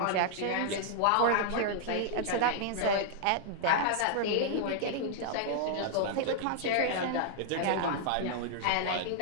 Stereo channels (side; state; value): both; different; correlation -0.01